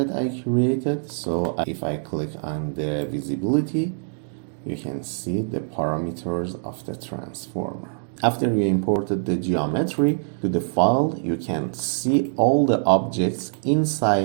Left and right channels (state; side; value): silent; left; digital silence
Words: I created, so if I click on the visibility, you can see the parameters of the transformer. After you imported the geometry to the file, you can see all the objects